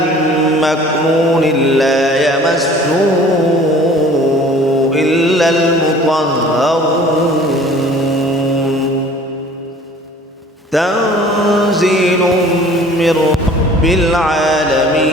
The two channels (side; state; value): both; normal; correlation 0.49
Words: مكنون لا يمسه إلا المطهرون تنزيل من رب